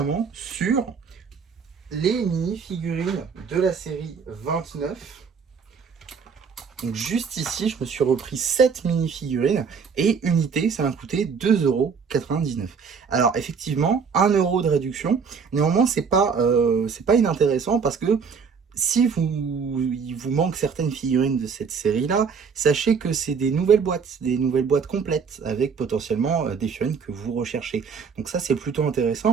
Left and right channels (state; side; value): quieter; left; 5.9 dB